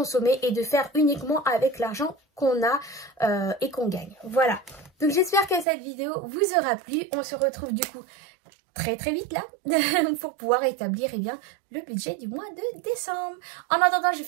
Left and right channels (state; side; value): drops out; left; at 5.7 s